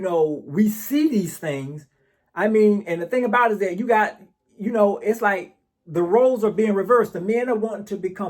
see these things. I mean, and the thing about it is that you got, it's like the roles are being reversed. The men are wanting to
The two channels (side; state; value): both; identical; correlation 1.00